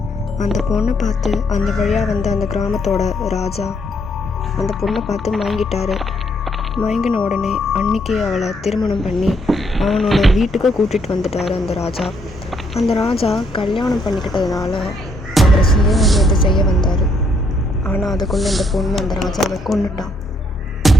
அந்த பொண்ணை பார்த்து அந்த வழியாக வந்த அந்த கிராமத்தோட ராஜா அந்த பொண்ணை பார்த்து மயங்கிட்டாரு. மயங்கின உடனே அன்னைக்கு அவளை திருமணம் பண்ணி அவனோட வீட்டுக்கு கூட்டிகிட்டு வந்துட்டார் அந்த ராஜா. அந்த ராஜா கல்யாணம் பண்ணிக்கிட்டதுனால அவரை சுயமரியாதை செய்ய வந்தார். ஆனால் அதுக்குள்ளே இந்த பொண்ணு அந்த ராஜாவை கொன்னுட்டான்.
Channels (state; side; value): normal; both; correlation 0.71